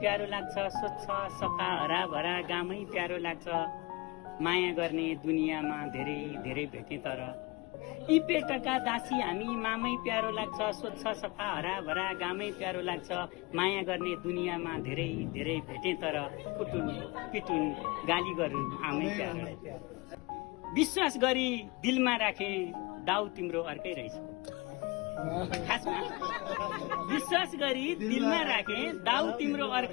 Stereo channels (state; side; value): quieter; right; 25.2 dB